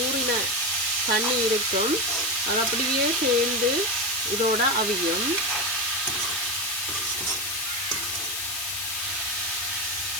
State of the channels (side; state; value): left; noise; hiss, 3 dB below the sound